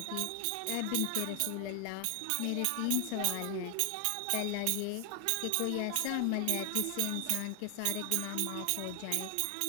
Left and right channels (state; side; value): different; both; correlation 0.00